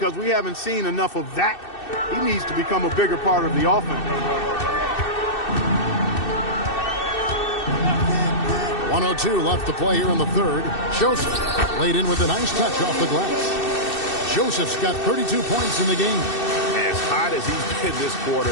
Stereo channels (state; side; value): late; right; 2.6 ms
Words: we haven't seen enough of that. He needs to become a bigger part of the offense. 1:02 left to play here in the third. Joseph laid in with a nice touch off the glass. Joseph's got 32 points in the game. As hot as he's been this quarter,